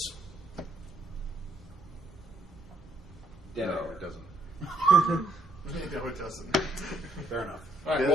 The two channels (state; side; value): normal; both; correlation 0.71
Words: No, it doesn't. No, it doesn't. Fair enough. All right,